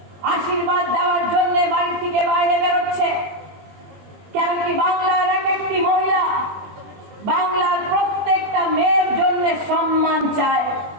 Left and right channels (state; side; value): late; left; 20 ms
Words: আশীর্বাদ দেওয়ার জন্য বাড়ি থেকে বাইরে বেরোচ্ছে? কেন কি বাংলার এক একটি মহিলা বাংলার প্রত্যেকটা মেয়ের জন্য সম্মান চায়?